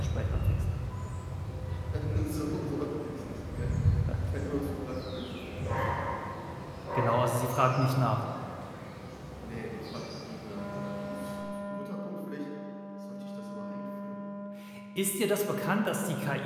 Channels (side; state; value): both; identical; correlation 1.00